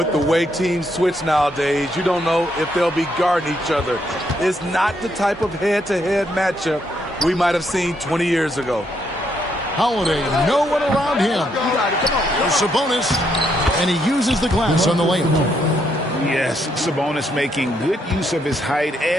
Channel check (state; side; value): normal; both; correlation 0.75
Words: the way teams switch nowadays, you don't know if they'll be guarding each other. It's not the type of head-to-head matchup we might have seen 20 years ago. Holiday, no one around him. Sabonis, and he uses the glass on the layup. Yes, Sabonis making good use of his height